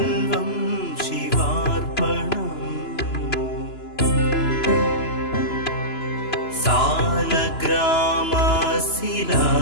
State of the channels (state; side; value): late; right; 2.9 ms